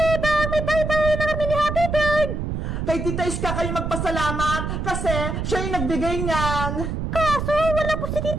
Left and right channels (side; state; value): right; noise; rumble, 3 dB below the sound